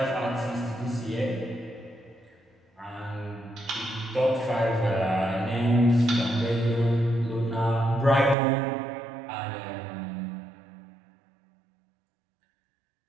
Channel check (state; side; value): drops out; left; at 8.3 s